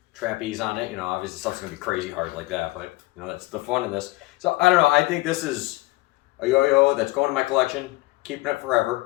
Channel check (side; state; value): right; quieter; 20.7 dB